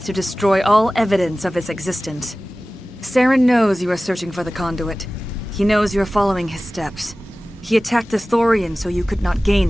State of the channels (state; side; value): normal; both; correlation 0.97